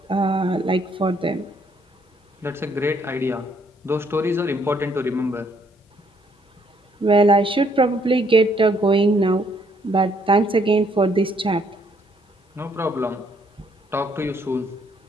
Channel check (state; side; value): normal; both; correlation 0.68